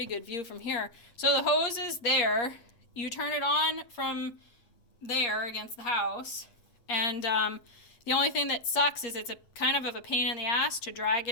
good view from here. So the hose is there. You turn it on from there against the house, and the only thing that sucks is it's a kind of a pain in the ass to drag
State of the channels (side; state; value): right; late; 8.5 ms